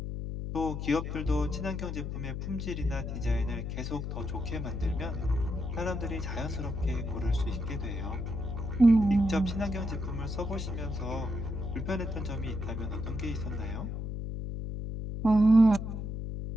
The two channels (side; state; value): left; noise; hum, 4 dB below the sound